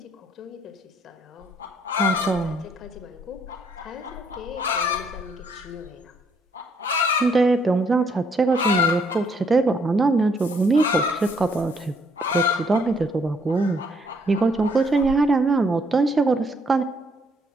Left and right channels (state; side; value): normal; both; correlation 0.69